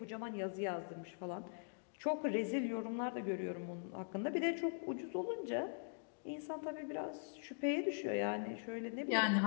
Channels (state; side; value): silent; right; digital silence